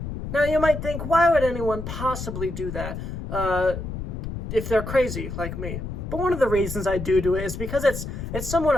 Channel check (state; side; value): noise; left; rumble, 6 dB below the sound